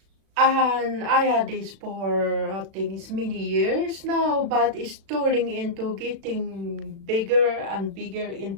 and I had this for I think it's many years now, but it's turning into getting bigger and bigger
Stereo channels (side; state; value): left; late; 36 ms